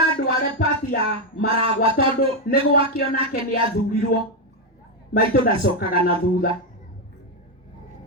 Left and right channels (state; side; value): normal; both; correlation 0.05